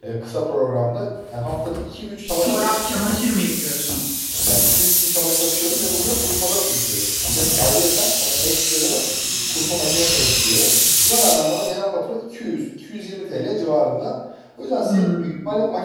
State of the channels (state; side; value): identical; both; correlation 1.00